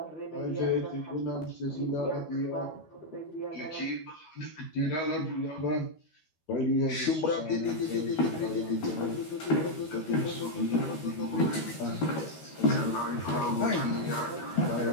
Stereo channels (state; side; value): late; right; 13 ms